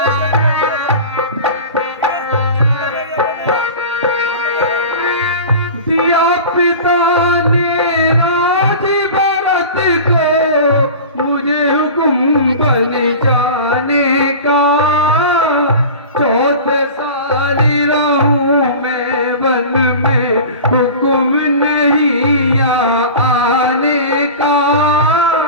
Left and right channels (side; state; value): both; inverted; correlation -0.35